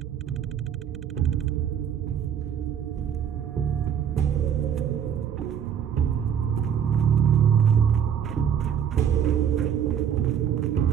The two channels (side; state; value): left; quieter; 8.5 dB